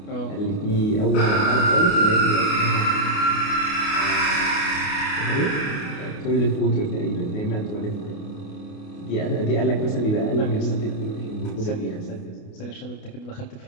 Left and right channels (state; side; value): late; right; 28 ms